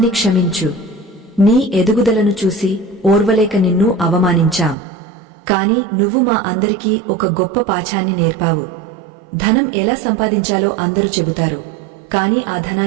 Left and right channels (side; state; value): left; drops out; at 4.8 s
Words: క్షమించు. నీ ఎదుగుదలను చూసి ఓర్వలేక నిన్ను అవమానించాం. కాని నువ్వు మా అందరికీ ఒక గొప్ప పాఠాన్ని నేర్పావు. ధనం ఎలా సంపాదించాలో అందరూ చెబుతారు, కాని ఆ